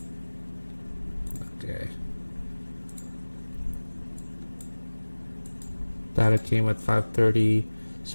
Okay, data came at 5:30,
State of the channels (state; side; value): inverted; both; correlation -1.00